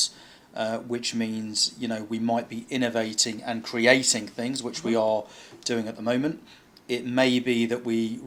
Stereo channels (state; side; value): identical; both; correlation 1.00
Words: which means we might be innovating and creating things, which we are doing at the moment. It may be that we